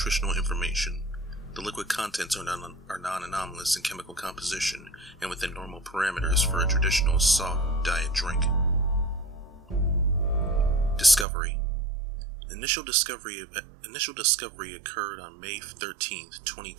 information. The liquid contents are non-anomalous in chemical composition and within normal parameters for a traditional soft diet drink. Discovery. Initial discovery occurred on May 13,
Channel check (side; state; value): left; drops out; at 11.2 s